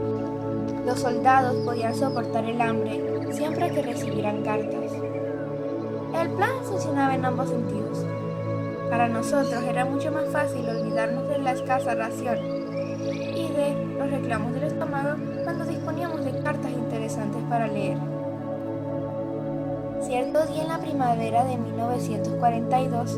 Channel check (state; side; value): identical; both; correlation 1.00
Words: Los soldados podían soportar el hambre siempre que recibieran cartas. El plan funcionaba en ambos sentidos. Para nosotros era mucho más fácil olvidarnos de la escasa ración y de los reclamos del estómago cuando disponíamos de cartas interesantes para leer. Cierto día en la primavera de